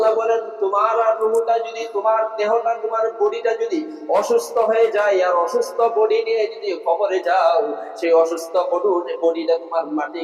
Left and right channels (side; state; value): both; identical; correlation 1.00